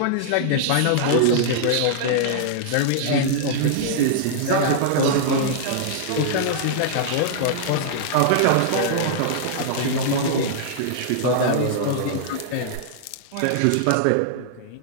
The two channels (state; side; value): different; both; correlation -0.01